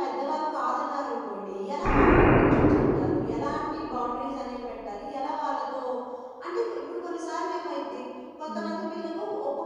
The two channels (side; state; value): both; identical; correlation 1.00